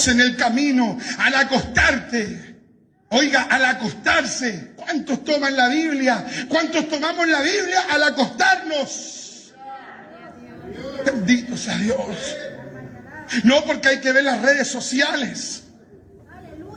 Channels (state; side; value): identical; both; correlation 1.00